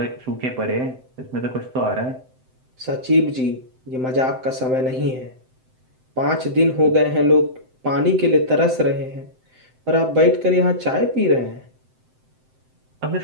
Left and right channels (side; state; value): left; late; 7.8 ms